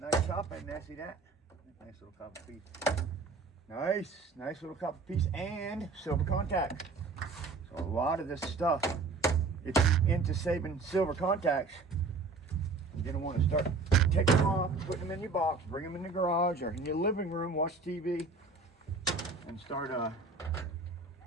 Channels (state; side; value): quieter; left; 4.0 dB